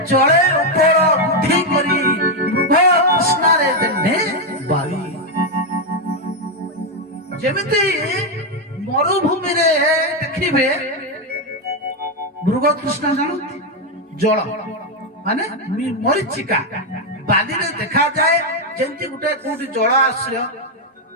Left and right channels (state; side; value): normal; both; correlation 0.04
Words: ଜଳେ ଉପର ବୁଦ୍ଧି କରି ମୃଗ କୃଷ୍ଣରେ ଦେନେ ବାରି। ଯେମିତି ମରୁଭୂମିରେ ଦେଖିବେ ମୃଗ କୃଷ୍ଣ ଜାଣନ୍ତି, ଜଳ ମାନେ ମରିଚିକା ବାଲିରେ ଦେଖାଯାଏ। ଯେମିତି ଗୋଟେ କୋଉଠି ଜଳ ଆଶ୍ରୟ,